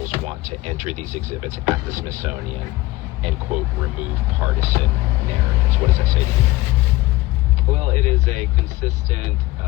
want to enter these exhibits at the Smithsonian and, quote, remove partisan narratives? What does that say to you? Well, it is a consistent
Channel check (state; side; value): quieter; right; 18.7 dB